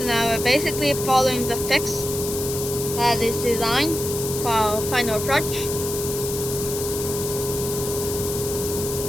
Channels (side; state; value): left; noise; hiss, 6 dB below the sound